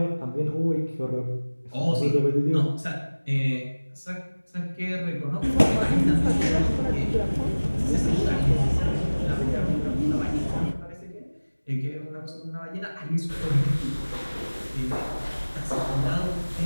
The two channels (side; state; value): both; inverted; correlation -1.00